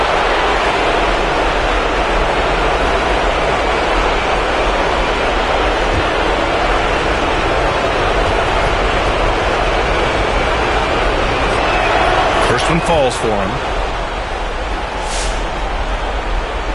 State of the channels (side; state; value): both; identical; correlation 1.00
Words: First one falls for him.